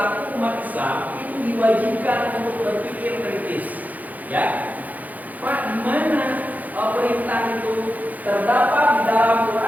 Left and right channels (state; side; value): late; left; 0.080 ms